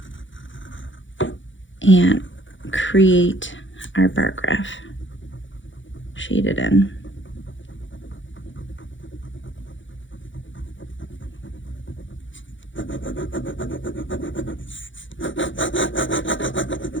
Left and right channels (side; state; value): right; late; 0.56 ms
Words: and create our bar graph. Shade it in.